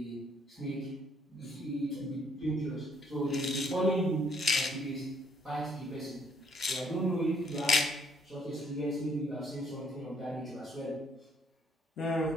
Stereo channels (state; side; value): normal; both; correlation 0.66